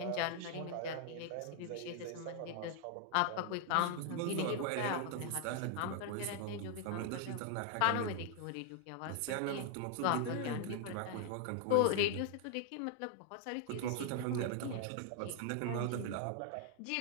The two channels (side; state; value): both; different; correlation 0.00